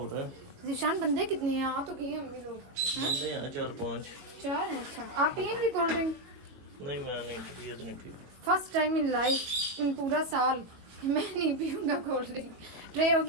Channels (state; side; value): late; left; 21 ms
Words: रहा है ज़ीशान, बंदे कितने हैं? आ तो गए अम्मी लोग, बंदे हैं 4-5। 4 हैं। अच्छा, आप पियेंगे कोल्ड ड्रिंक? नहीं मैं नहीं, तबीयत नहीं ठीक। फर्स्ट टाइम इन लाइफ, इन पूरा साल, मैं नहीं पीऊंगा कोल्ड ड्रिंक। ट्रे हो